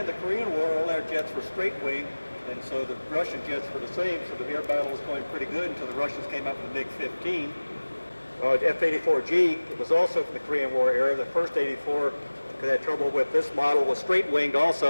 the Korean War, all our jets were straight wing, and so the Russian jets were the same, so the air battle was going pretty good until the Russians came up with the MiG-15. F-84G was also from the Korean War era. The first 84 had trouble with this model, was straight winged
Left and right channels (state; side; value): inverted; both; correlation -1.00